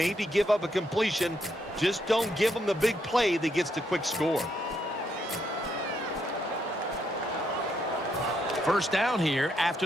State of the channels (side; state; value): both; normal; correlation 0.76